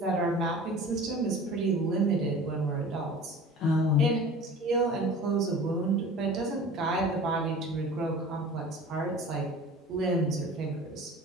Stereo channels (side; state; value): both; normal; correlation 0.40